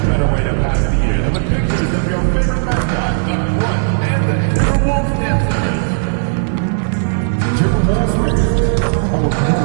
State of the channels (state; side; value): silent; left; digital silence